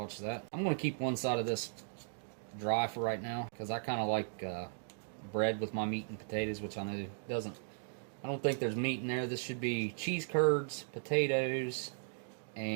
that. I'm going to keep one side of this dry for right now, because I kind of like bread with my meat and potatoes, which I know doesn't. I don't think there's meat in there. This should be cheese curds, potatoes,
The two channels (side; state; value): left; silent; digital silence